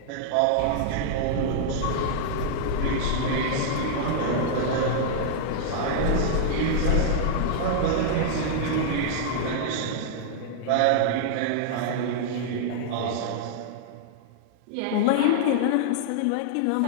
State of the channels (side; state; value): both; different; correlation -0.01